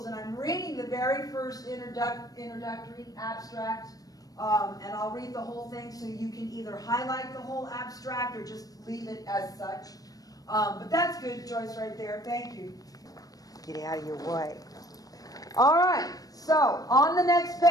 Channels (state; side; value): late; right; 0.18 ms